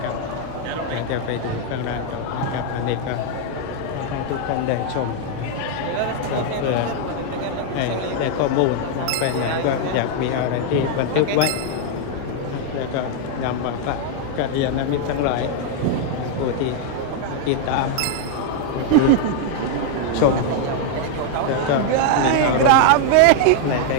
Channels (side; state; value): both; different; correlation 0.00